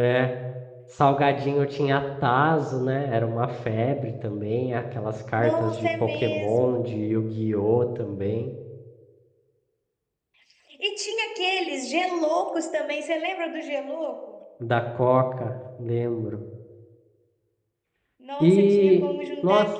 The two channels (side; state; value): both; identical; correlation 1.00